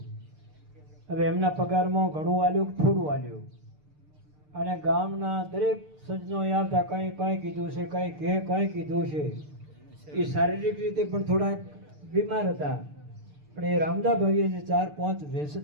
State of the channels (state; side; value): late; left; 6.7 ms